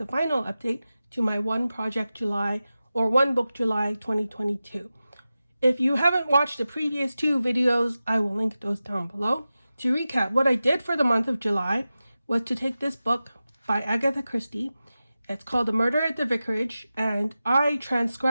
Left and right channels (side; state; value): both; inverted; correlation -0.94